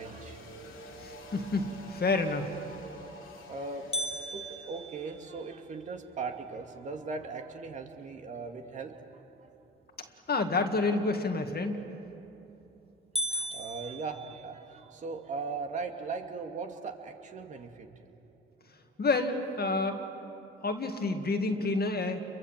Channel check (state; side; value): normal; both; correlation 0.31